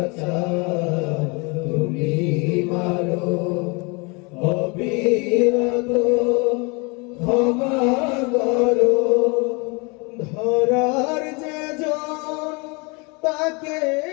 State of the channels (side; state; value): right; quieter; 29.8 dB